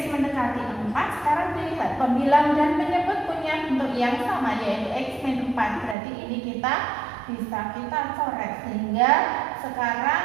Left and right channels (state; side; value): drops out; left; at 6.0 s